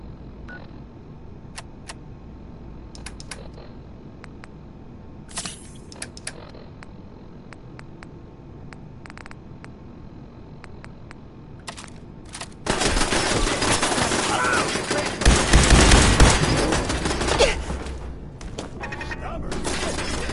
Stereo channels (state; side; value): identical; both; correlation 1.00